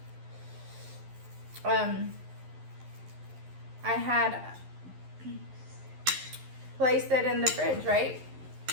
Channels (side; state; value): left; late; 11 ms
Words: I had placed it in the fridge, right?